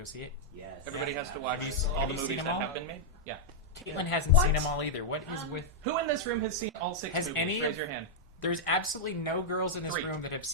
see it. Yes. Everybody has to watch Have you- all have the you movies seen them that all? have been made. Yeah. Caitlin hasn't What? seen them all either. What is with? Who in this room has seen all 6 Has movies? any Raise of- your hand. There's absolutely no girls in this 3. room that have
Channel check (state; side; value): normal; both; correlation -0.05